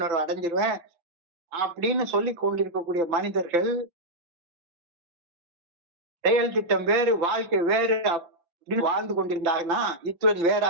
அடைஞ்சிருவேன் அப்படின்னு சொல்லி கொண்டிருக்கக்கூடிய மனிதர்கள் செயல் திட்டம் வேறு, வாழ்க்கை வேறு அப்படின்னு வாழ்ந்து கொண்டிருந்தாங்கன்னா இத்துடன் வேறா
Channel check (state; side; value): late; left; 5.9 ms